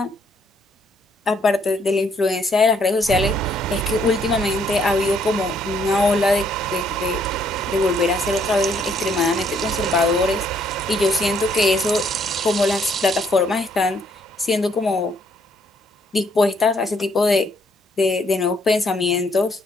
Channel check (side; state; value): both; normal; correlation 0.68